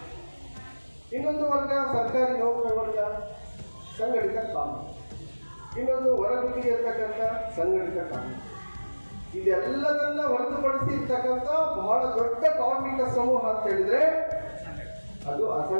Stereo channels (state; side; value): inverted; both; correlation -1.00